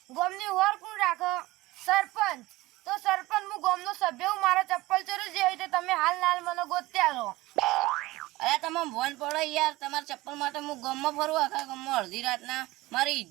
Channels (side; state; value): left; quieter; 19.4 dB